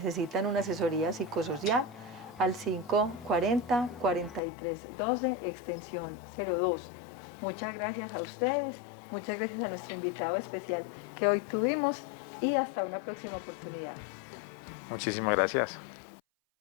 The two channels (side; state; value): right; drops out; at 4.4 s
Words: una asesoría psicosocial al 540-4312, extensión 02. Muchas gracias a ustedes, muchas gracias a nuestro invitado especial que hoy tuvimos y hasta una próxima oportunidad. Muchísimas gracias.